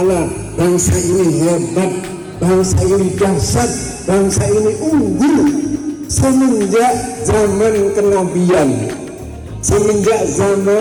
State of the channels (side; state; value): both; identical; correlation 1.00